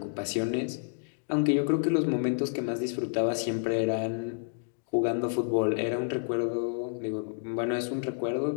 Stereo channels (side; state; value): right; silent; digital silence